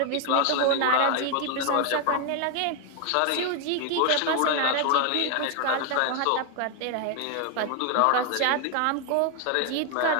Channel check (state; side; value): different; both; correlation 0.00